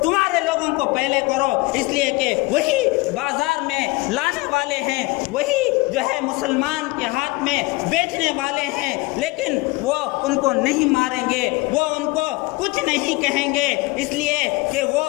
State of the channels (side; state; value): right; quieter; 23.2 dB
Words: تمہارے لوگوں کو پہلے کرو، اس لیے کہ وہی بازار میں لانے والے ہیں، وہی جو ہے مسلمان کے ہاتھ میں بیچنے والے ہیں، لیکن وہ ان کو نہیں ماریں گے، وہ ان کو کچھ نہیں کہیں گے، اس لیے کہ وہ